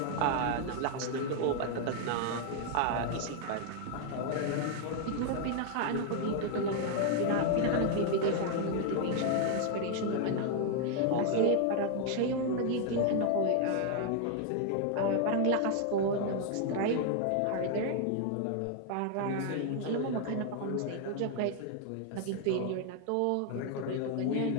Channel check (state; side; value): different; both; correlation 0.00